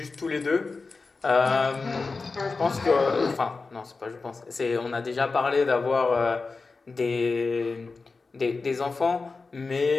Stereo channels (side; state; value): right; quieter; 4.1 dB